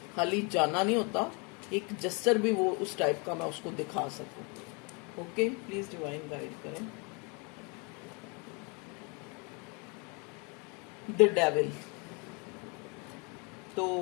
खाली जाना नहीं होता, एक जेस्चर भी वो उस टाइप का मैं उसको दिखा सकूं। ओके, प्लीज डिवाइन गाइड करें। द डेविल, तो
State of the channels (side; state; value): right; quieter; 32.2 dB